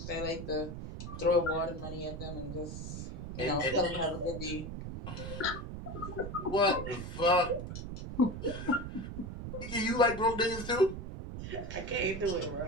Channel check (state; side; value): noise; right; rumble, 7 dB below the sound